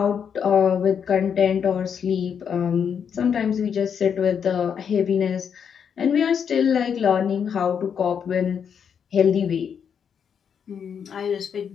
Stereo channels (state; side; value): quieter; right; 7.4 dB